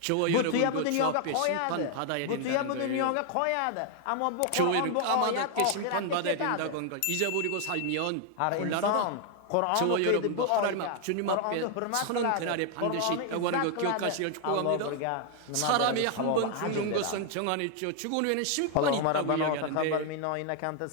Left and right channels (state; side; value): different; both; correlation 0.00